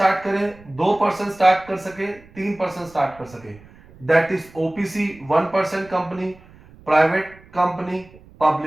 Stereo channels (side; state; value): right; noise; rumble, 24 dB below the sound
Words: करे, 2% स्टार्ट कर सके, 3% स्टार्ट कर सके, that is OPC 1% company, private company,